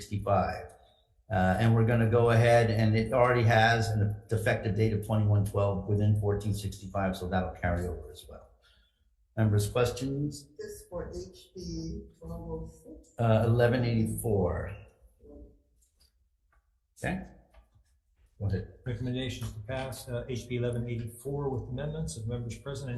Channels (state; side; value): identical; both; correlation 1.00